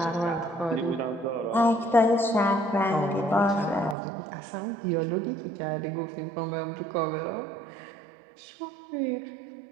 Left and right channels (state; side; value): drops out; left; at 4.0 s